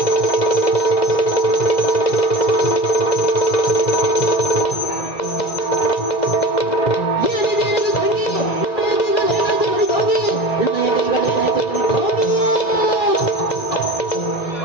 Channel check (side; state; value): right; late; 1.9 ms